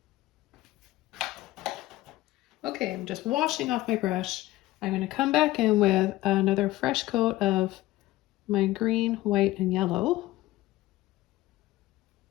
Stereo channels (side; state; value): right; quieter; 16.9 dB